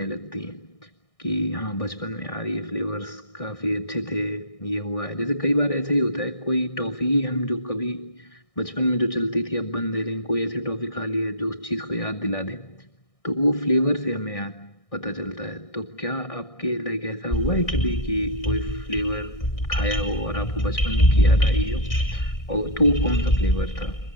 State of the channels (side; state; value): right; late; 1.6 ms